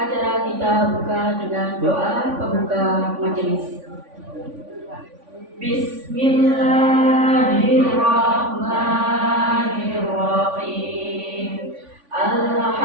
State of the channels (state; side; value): late; left; 3.5 ms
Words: kita buka dengan doa pembuka majelis. Bismillahirrahmanirrahim.